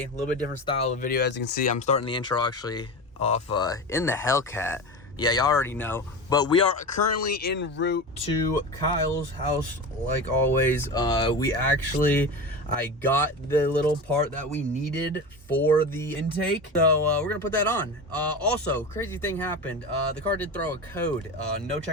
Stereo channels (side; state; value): both; normal; correlation 0.26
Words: a little bit different style of video. As you can see, I'm starting the intro actually off in the Hellcat. Yeah, y'all already know. But we are currently en route to Kyle's house, like always. I got the little part that we needed for the intake. So we're gonna put that on. Also, crazy thing happened. The car did throw a code. No